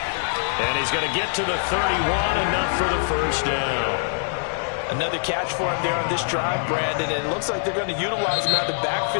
And he's going to get to the 31, enough for the 1st down. Another catch for him there on this drive, Brandon, and it looks like they're going to utilize him out of the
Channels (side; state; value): right; silent; digital silence